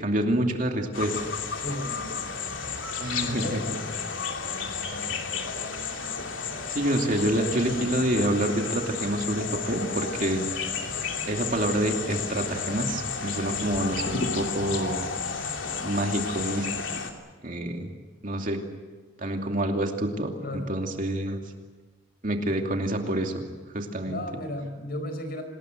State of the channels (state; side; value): normal; both; correlation 0.43